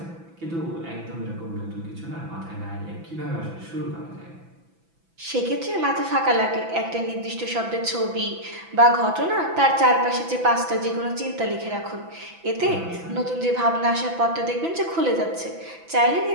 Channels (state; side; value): late; left; 6.0 ms